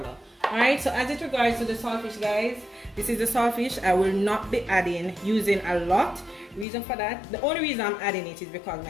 Alright, so as it regards to the saltfish guys, this is the saltfish. I will not be using a lot. Reason for that, the only reason I'm adding it is because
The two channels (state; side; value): drops out; right; at 6.7 s